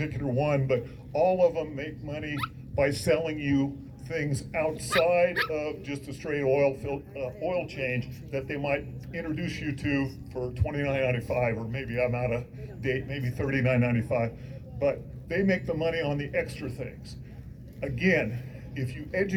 one, but all of them make money by selling you things outside of just a straight oil change that they might introduce you to for $29.95, or maybe I'm out of date, maybe $39.95. But they make the money on the extra things. Again, if you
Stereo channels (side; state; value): both; identical; correlation 1.00